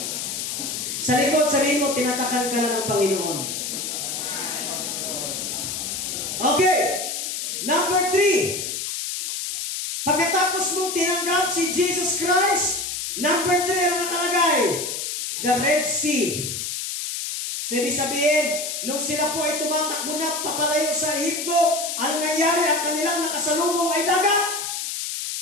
Sa likod, sabihin mo, tinatakan ka na ng Panginoon. Okay. Number 3. Pagkatapos mong tinanggap si Jesus Christ, number 3 ang nakalagay, the Red Sea. So, ibig sabihin, nung sila po ay tumatakbo na papalayo sa Ehipto, ano nangyari? Ang kanilang nakasalubong ay dagat.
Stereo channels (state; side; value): noise; left; hiss, 4 dB below the sound